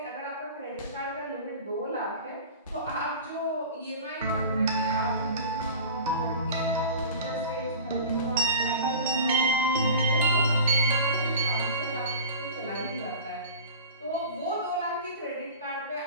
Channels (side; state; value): both; inverted; correlation -0.37